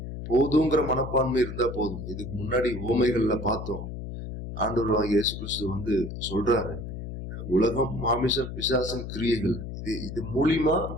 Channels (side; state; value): left; noise; hum, 8 dB below the sound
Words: போதுங்கிற மனப்பான்மை இருந்தா போதும். இதுக்கு முன்னாடி உவமைகள்ல பார்த்தோம். ஆண்டவர் இயேசு கிறிஸ்து சொல்றாரு, உலகம், மாமிசம், பிசாசம், கிரியைகள், இது மூலியமா